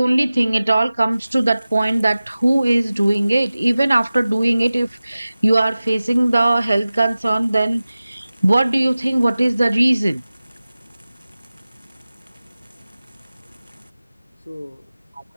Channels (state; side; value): inverted; both; correlation -0.97